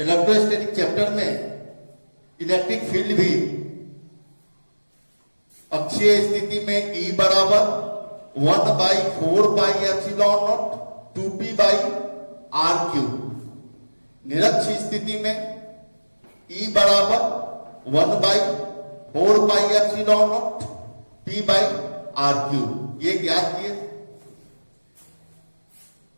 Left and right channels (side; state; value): both; inverted; correlation -1.00